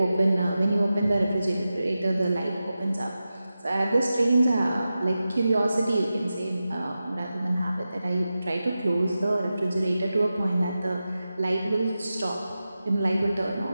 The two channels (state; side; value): inverted; both; correlation -0.93